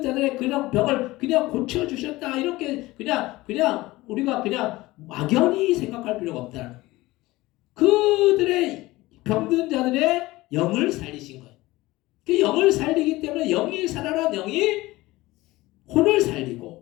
자들의 그냥 병을 그냥 고쳐주셨다 이렇게 그냥 우리가 그냥 막연히 생각할 필요가 없다는 거예요. 그들의 병든 자들의 영을 살리신 거예요. 그 영을 살리기 때문에 영이 살아난 영이 혼을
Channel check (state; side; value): quieter; right; 19.2 dB